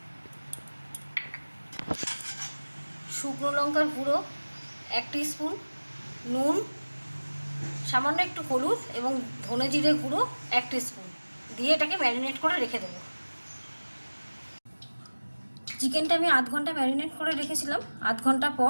শুকনো লঙ্কার গুঁড়ো 1 টিস্পুন, নুন, সামান্য একটু হলুদ এবং ধনে জিরে গুঁড়ো 1 টিস্পুন দিয়ে এটাকে ম্যারিনেট করে রেখে দেবো। চিকেনটা আমি আধ ঘন্টা ম্যারিনেট করে রেখেছিলাম। আধ ঘন্টা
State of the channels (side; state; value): both; inverted; correlation -1.00